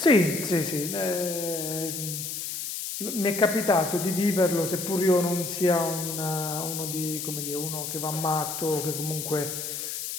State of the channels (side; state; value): left; noise; hiss, 5 dB below the sound